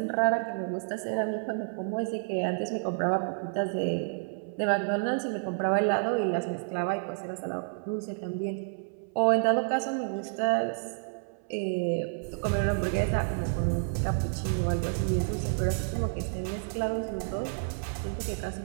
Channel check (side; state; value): left; silent; 58 dB below the other